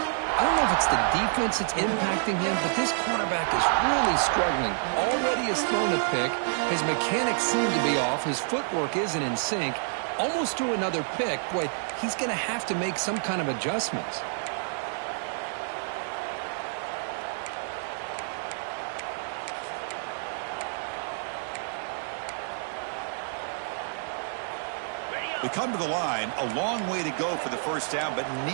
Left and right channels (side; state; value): left; silent; digital silence